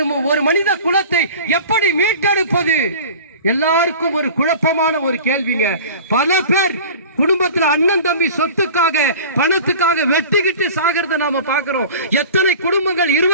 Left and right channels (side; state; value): both; inverted; correlation -0.39